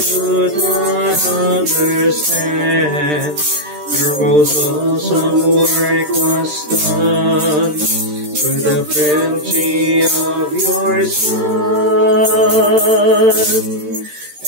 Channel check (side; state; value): left; late; 13 ms